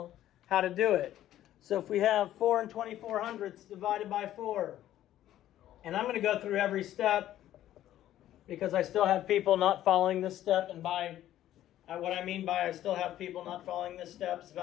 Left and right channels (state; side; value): quieter; right; 12.8 dB